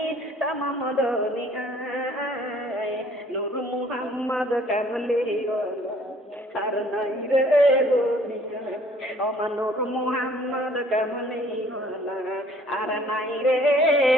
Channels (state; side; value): normal; both; correlation 0.57